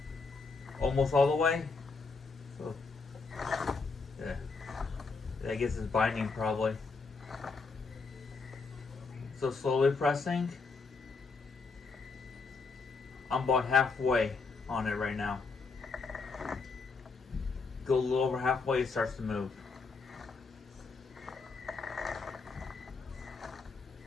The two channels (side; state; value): right; quieter; 4.4 dB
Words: Almost all the way. So, yeah. I guess it's binding probably. So slowly pressing. I'm about halfway on it right now. Go a little over halfway, it starts to move.